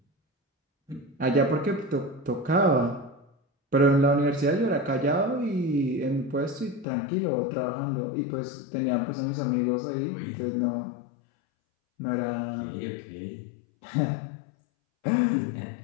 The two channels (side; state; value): right; drops out; at 6.9 s